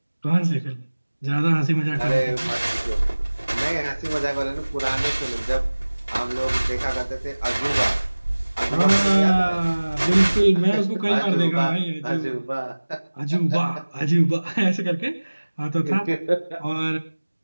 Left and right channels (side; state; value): both; inverted; correlation -1.00